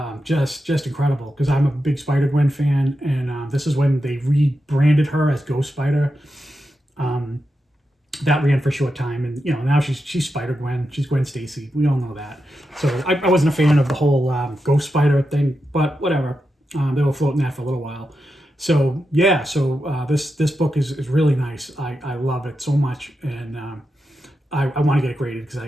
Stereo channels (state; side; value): normal; both; correlation 0.88